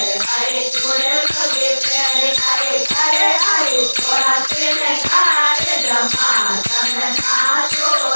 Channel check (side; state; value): both; inverted; correlation -1.00